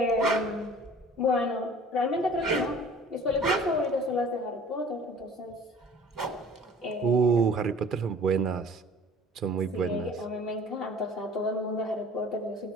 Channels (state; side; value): normal; both; correlation 0.47